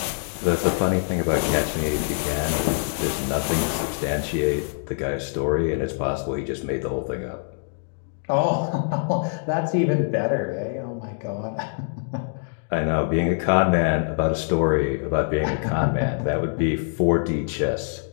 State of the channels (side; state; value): right; silent; digital silence